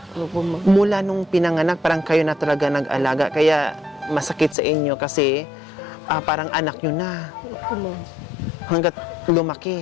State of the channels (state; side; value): drops out; right; at 4.5 s